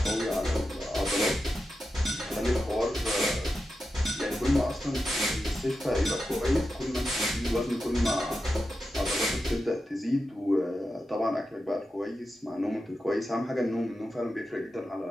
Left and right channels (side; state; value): both; normal; correlation 0.90